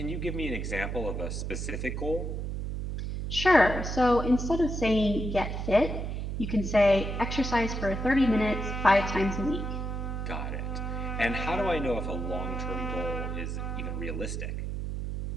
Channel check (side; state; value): right; noise; hum, 4 dB below the sound